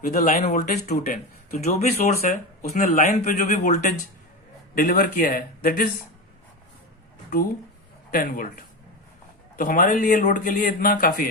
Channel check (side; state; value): both; normal; correlation 0.20